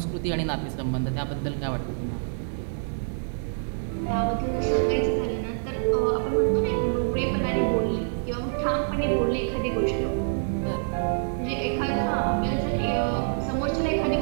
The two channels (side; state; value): left; silent; digital silence